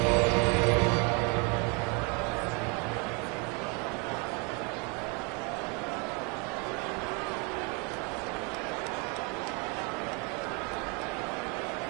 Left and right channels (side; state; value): left; quieter; 32.4 dB